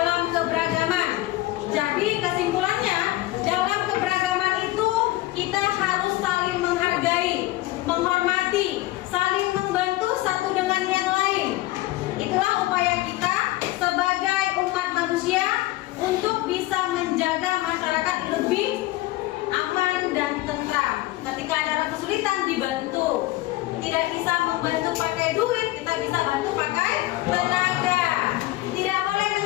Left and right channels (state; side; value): quieter; right; 17.9 dB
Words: keberagaman. Jadi kesimpulannya, dalam keberagaman itu kita harus saling menghargai, menghormati, saling membantu satu dengan yang lain. Itulah upaya kita sebagai umat manusia untuk bisa menjaga masyarakat lebih aman dan tentram. Ketika ada kesulitan dibantu. Tidak bisa membantu pakai duit, kita bisa bantu pakai tenaga. Tidak boleh